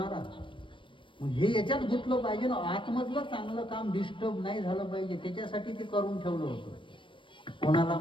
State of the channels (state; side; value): late; right; 0.25 ms